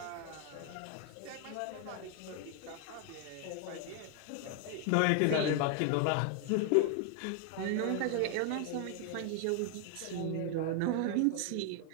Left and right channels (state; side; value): different; both; correlation 0.00